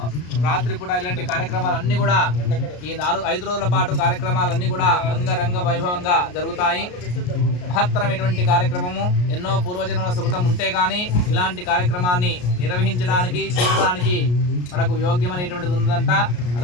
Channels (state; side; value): late; right; 33 ms